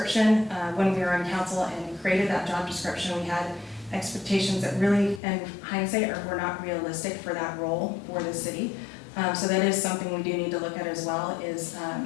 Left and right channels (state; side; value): drops out; right; at 5.2 s